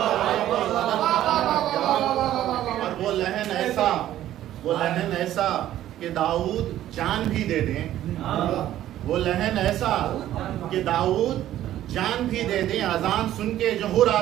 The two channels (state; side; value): quieter; left; 12.8 dB